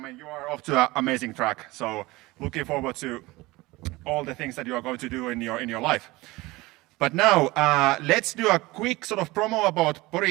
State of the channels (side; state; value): left; quieter; 21.0 dB